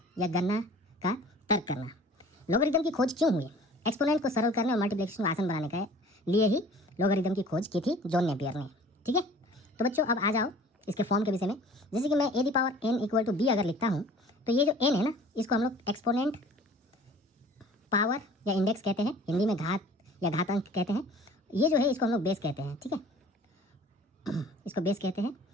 या गणना का तर्क करना। लॉगरिदम की खोज क्यों हुई? एक्सपोनेंट को सरल करने और मल्टीप्लिकेशन को आसान बनाने के लिए ही लॉगरिदम की खोज की थी जॉन नेपियर ने। ठीक है, तो बच्चों अब आ जाओ इसके फॉर्म के विषय में। जैसे कि मैं a the power n equal to b अगर लिखता हूँ तो ये जो n है ना, इसको हम लोग एक्सपोनेंट पावर या इंडेक्स कहते हैं, हिंदी में घात या घातांक कहते हैं। ये जो है इसको हम लोग बेस कहते हैं। ठीक है, इसको बेस कहते हैं।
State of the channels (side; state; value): both; normal; correlation 0.47